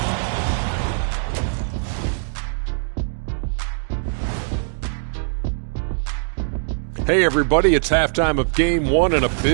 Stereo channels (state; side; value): silent; left; digital silence